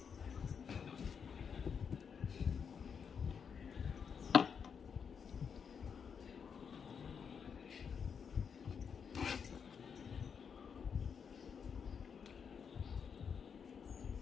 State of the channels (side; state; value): right; quieter; 6.7 dB